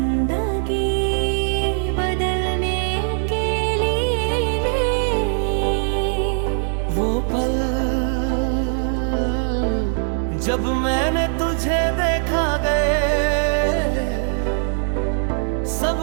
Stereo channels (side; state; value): left; silent; digital silence